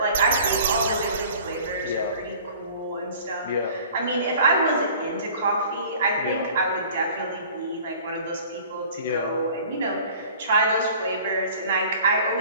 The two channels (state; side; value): inverted; both; correlation -0.48